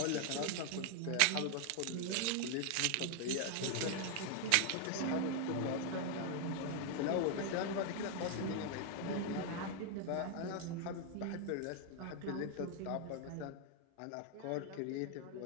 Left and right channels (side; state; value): both; different; correlation 0.00